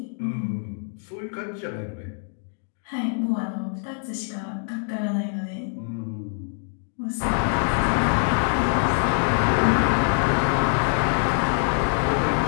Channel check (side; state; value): right; silent; 58 dB below the other